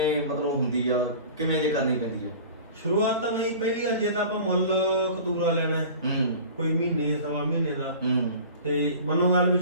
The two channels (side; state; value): both; inverted; correlation -0.40